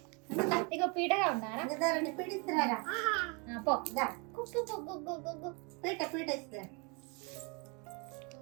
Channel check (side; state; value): left; quieter; 32.2 dB